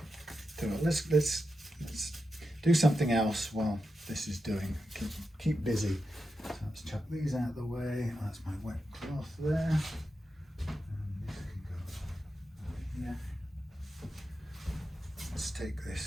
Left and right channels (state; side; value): normal; both; correlation 0.89